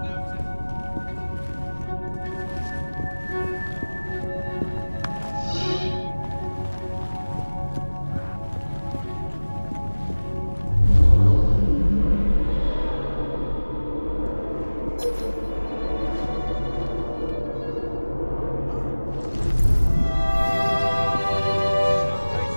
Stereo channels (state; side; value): inverted; both; correlation -1.00